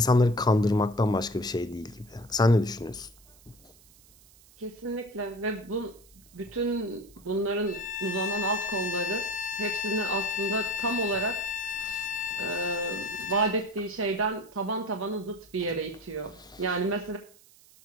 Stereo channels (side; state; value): right; noise; hiss, 26 dB below the sound